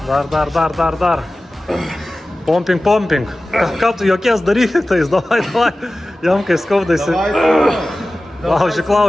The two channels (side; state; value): both; normal; correlation 0.96